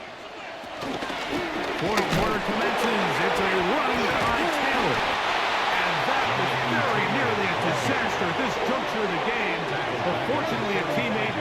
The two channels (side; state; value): both; identical; correlation 1.00